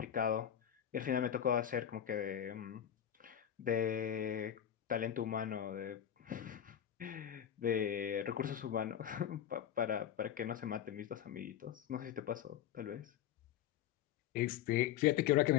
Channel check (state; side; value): quieter; right; 10.0 dB